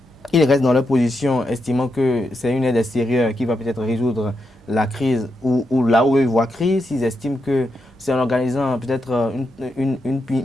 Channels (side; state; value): both; normal; correlation 0.84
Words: ils restent dans leur position, estimant que c'est une aide extérieure qui va peut-être résoudre la crise ou là où ils voient crise, s'ils estiment que c'est en organisant peut-être une